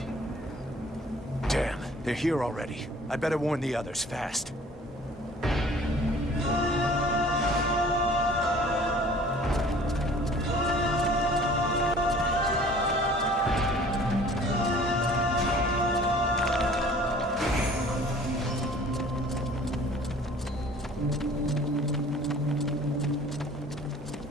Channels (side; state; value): both; normal; correlation 0.50